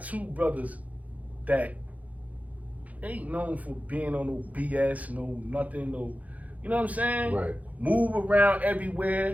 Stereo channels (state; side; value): late; left; 0.073 ms